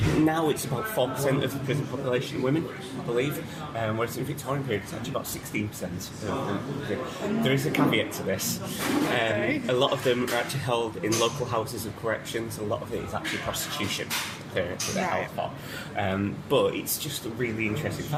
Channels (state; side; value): identical; both; correlation 1.00